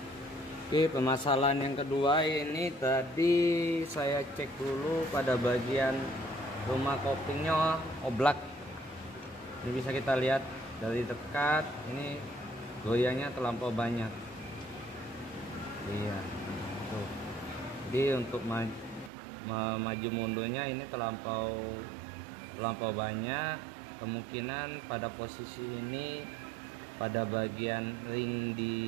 Oke, permasalahan yang kedua ini tadi saya cek dulu pada bagian rumah koplingnya oblak. Ini bisa kita lihat dari dekat, ini goyangnya terlampau banyak. Iya, tuh. Jadi untuk maju mundurnya ini terlampau banyak. Kemungkinan pada posisi ini, pada bagian ring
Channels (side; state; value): left; drops out; at 19.1 s